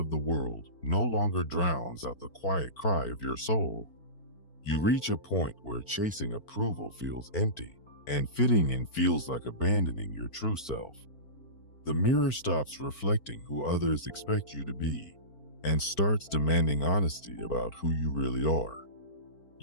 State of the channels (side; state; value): right; late; 4.4 ms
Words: the world no longer drowns out the quiet cry of your soul. You reach a point where chasing approval feels empty, and fitting in feels like abandoning your true self. The mirror stops reflecting who others expect you to be, and starts demanding honesty about who you really are.